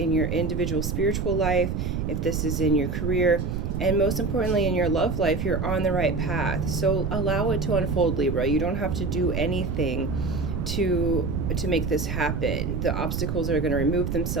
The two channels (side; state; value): right; noise; rumble, 2 dB below the sound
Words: your individual spiritual life, if this is in your career, and most importantly in your love life, you're on the right path. So allow it to unfold, Libra. You don't have to do anything to make this happen. The obstacles are going to remove